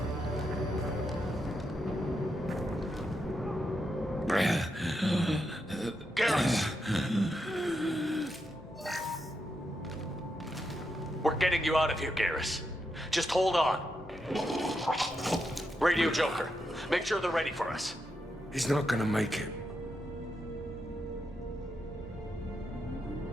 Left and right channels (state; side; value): normal; both; correlation 0.84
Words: We're getting you out of here, Garrus. Just hold on. Radio Joker, make sure they're ready for us. He's not gonna make it.